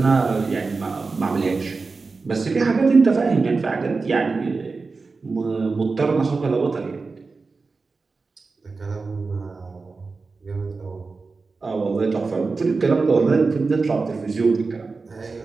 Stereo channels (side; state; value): left; quieter; 4.2 dB